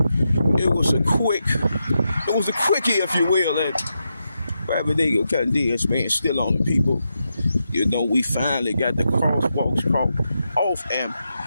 it was a quickie, if you will, that Rabbit Eagle continues, man, still on the people. You know, we finally got the crosswalks off, and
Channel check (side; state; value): both; inverted; correlation -0.86